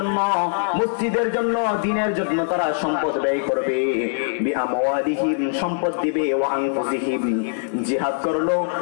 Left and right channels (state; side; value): silent; right; 64 dB below the other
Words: মসজিদের জন্য, দ্বীনের জন্য তারা সম্পদ ব্যয় করবে। বিআমওয়ালিহিম, সম্পদ দিবে। ওয়া আনফুসিহিম, জিহাদ করলো,